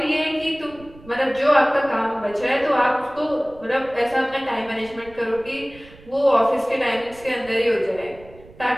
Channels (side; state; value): right; noise; rumble, 22 dB below the sound